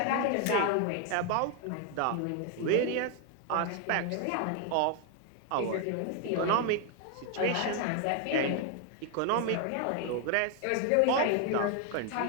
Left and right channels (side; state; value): both; different; correlation 0.01